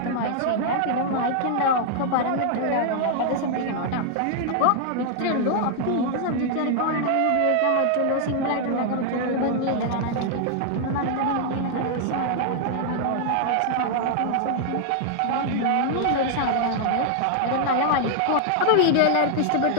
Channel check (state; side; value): different; both; correlation 0.00